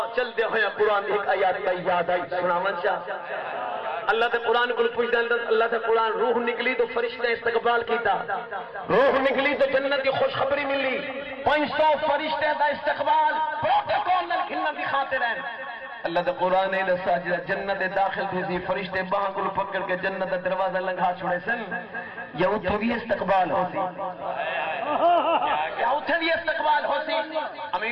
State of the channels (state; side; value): identical; both; correlation 1.00